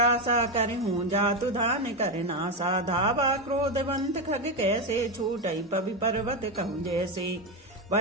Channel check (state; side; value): normal; both; correlation 0.11